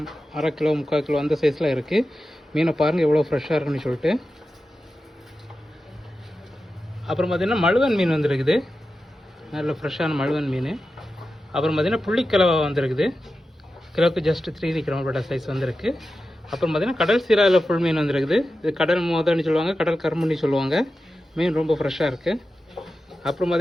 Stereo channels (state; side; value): normal; both; correlation 0.92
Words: அரை கிலோ, 3/4 கிலோ அந்த சைஸில் இருக்குது. மீனை பாருங்கள் எவ்வளோ ஃப்ரெஷ்ஷாக இருக்குன்னு சொல்லிட்டு. அப்புறம் பார்த்திங்கன்னா மழுவன் மீன் வந்திருக்குது, நல்ல ஃப்ரெஷ்ஷான மழுவன் மீன். அப்புறம் பார்த்திங்கன்னா புள்ளிக்கிழவை வந்திருக்குது, கிலோவுக்கு ஜஸ்ட் 3 கிராம் சைஸ் வந்திருக்கு. அப்புறம் பார்த்திங்கன்னா கடல் சீராவில் ஃபுல் மீன் வந்துருக்குது. இது கடல் மோதன்னு சொல்லுவாங்க, கடல் கரும்புன்னு சொல்லுவாங்க. மீன் ரொம்ப ஃப்ரெஷ்ஷாக இருக்குது. அப்புறம்